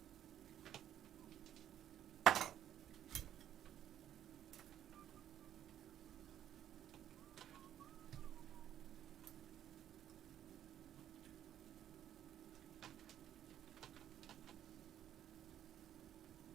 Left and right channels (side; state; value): left; quieter; 10.9 dB